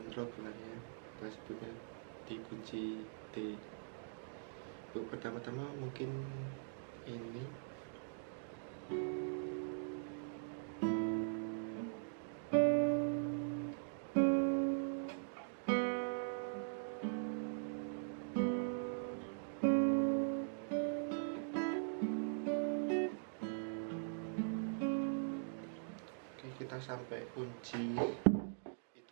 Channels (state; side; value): silent; left; digital silence